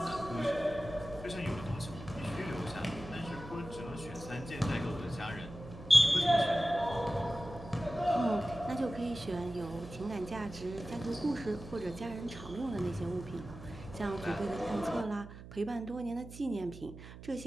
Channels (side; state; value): right; noise; hum, 14 dB below the sound